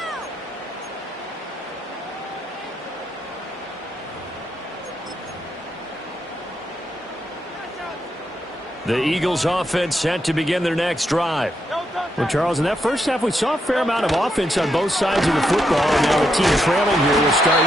The Eagles offense set to begin their next drive. Well, Charles, in that first half, we saw a fair amount of offense on both sides of the football, and now the team trailing here will start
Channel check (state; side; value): normal; both; correlation 0.81